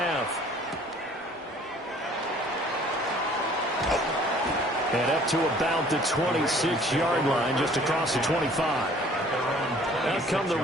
And up to about the 26-yard line, just across the 25. Out come the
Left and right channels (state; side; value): normal; both; correlation 0.54